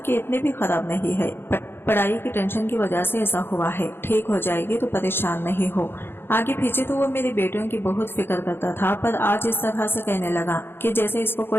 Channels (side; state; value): right; late; 0.11 ms